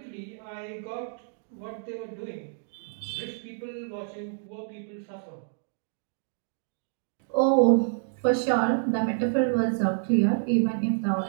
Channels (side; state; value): left; silent; digital silence